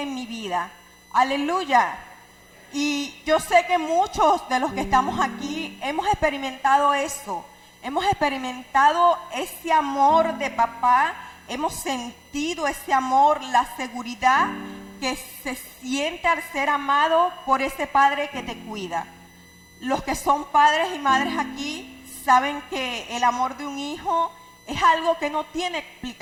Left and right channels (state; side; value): identical; both; correlation 1.00